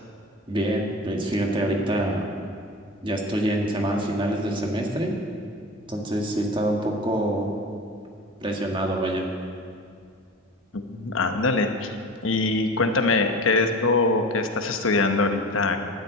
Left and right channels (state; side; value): normal; both; correlation 0.34